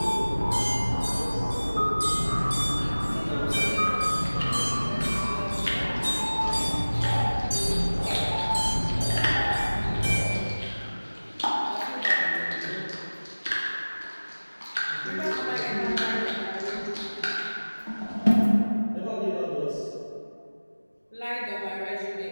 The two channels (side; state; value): both; inverted; correlation -1.00